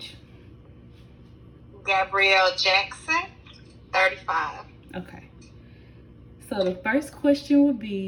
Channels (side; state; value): both; identical; correlation 1.00